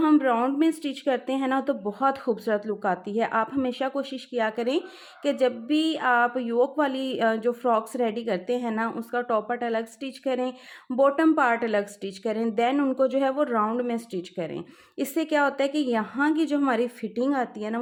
हम राउंड में स्टिच करते हैं ना तो बहुत खूबसूरत लुक आती है। आप हमेशा कोशिश किया करें कि जब भी आप योक वाली जो फ्रॉक्स रेडी करते हैं ना उसका टॉप पार्ट अलग स्टिच करें, बॉटम पार्ट अलग स्टिच करें, देन उनको जो है वो राउंड में स्टिच करें। इससे क्या होता है कि यहाँ की जो हमारी फिटिंग आती है ना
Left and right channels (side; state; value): both; identical; correlation 1.00